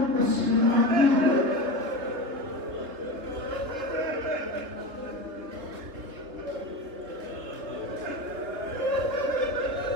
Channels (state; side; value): late; left; 3.4 ms